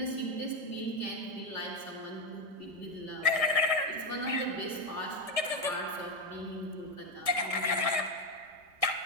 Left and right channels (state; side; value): late; left; 1.6 ms